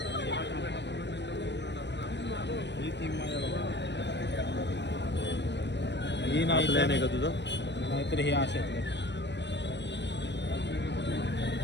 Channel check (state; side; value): late; right; 0.51 ms